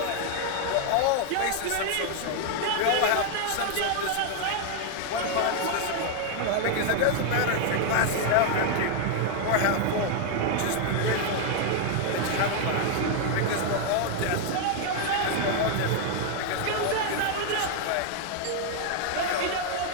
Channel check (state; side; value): different; both; correlation 0.00